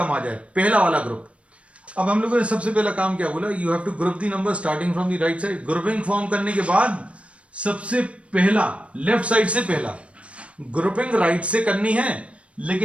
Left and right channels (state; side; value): late; left; 0.062 ms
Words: आ जाए. पहला वाला ग्रुप. अब हम लोगों ने सबसे पहला काम क्या बोला? You have to group the number starting from the right side. Grouping form करने के बाद सबसे पहला लेफ्ट साइड से पहला ग्रुपिंग राइट से करनी है,